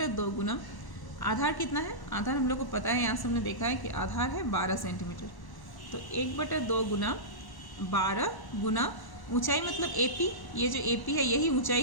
गुना आधार कितना है, आधार हम लोग को पता है, यहाँ से हमने देखा है कि आधार है 12 सेंटीमीटर। तो 1/2 गुना 12 गुना ऊंचाई मतलब AP, ये जो AP है यही ऊंचाई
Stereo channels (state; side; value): late; right; 1.1 ms